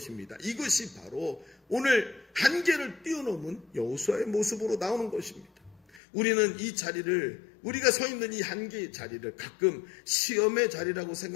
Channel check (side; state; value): right; drops out; at 6.0 s